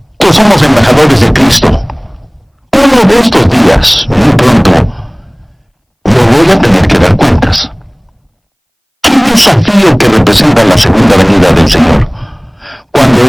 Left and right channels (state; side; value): identical; both; correlation 1.00